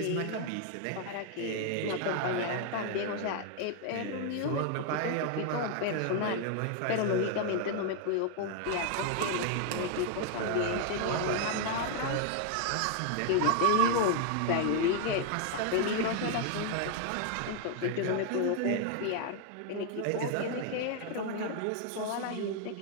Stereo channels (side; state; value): both; different; correlation 0.00